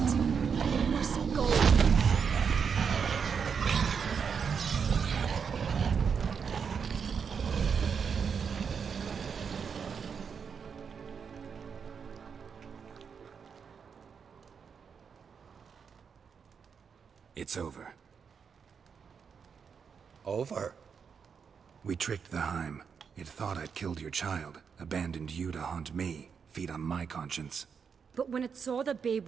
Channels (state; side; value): quieter; left; 6.4 dB